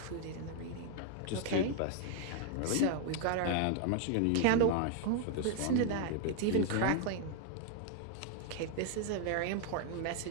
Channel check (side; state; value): both; different; correlation 0.00